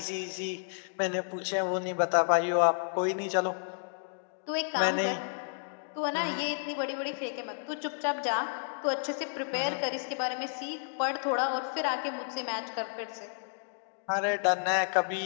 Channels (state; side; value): silent; right; digital silence